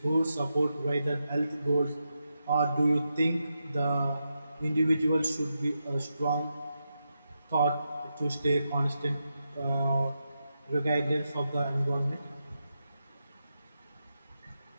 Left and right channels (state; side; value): inverted; both; correlation -0.86